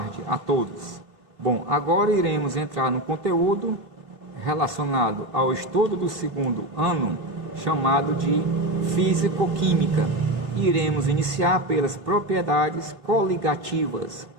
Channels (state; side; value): late; left; 2.7 ms